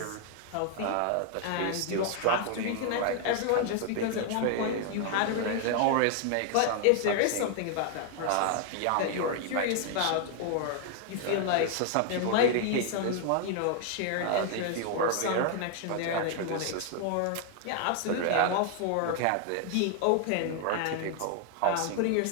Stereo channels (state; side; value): different; both; correlation 0.00